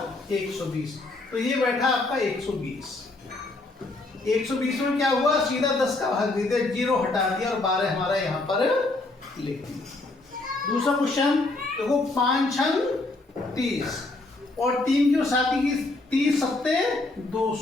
120, तो ये बैठा आपका 120। 120 में क्या हुआ, सीधा 10 का भाग दे दिया, 0 हटा दिया और 12 हमारा यहाँ पर लिख दिया। दूसरा क्वेश्चन देखो, 5 छंग 30 और 3 की साथी की 30 सत्ते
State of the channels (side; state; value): right; quieter; 3.1 dB